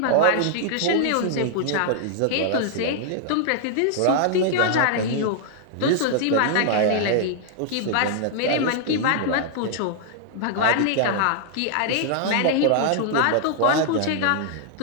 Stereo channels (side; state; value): both; different; correlation -0.01